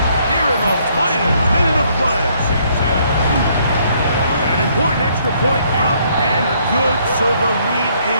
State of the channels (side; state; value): both; inverted; correlation -0.67